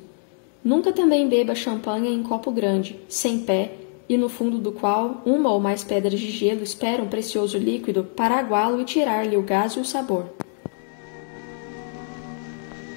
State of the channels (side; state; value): right; silent; 58 dB below the other